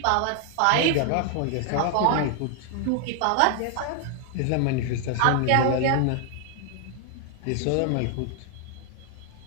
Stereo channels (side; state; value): both; different; correlation 0.00